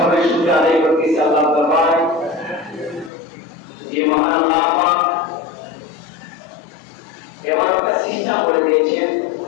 শুকর আদায় করতেছি আল্লাহ দরবারে যে মহান আল্লাহ পাক এমন একটা সিস্টেম করে দিয়েছেন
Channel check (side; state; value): right; drops out; at 3.1 s